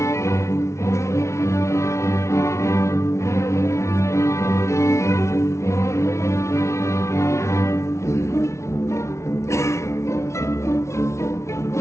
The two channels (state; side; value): late; right; 0.13 ms